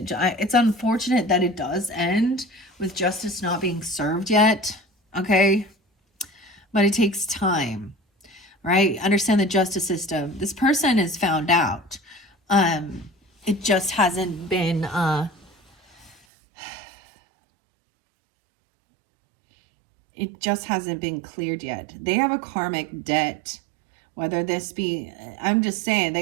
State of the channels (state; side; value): drops out; left; at 16.2 s